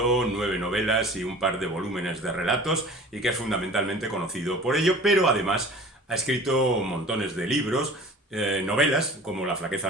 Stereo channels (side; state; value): both; normal; correlation 0.43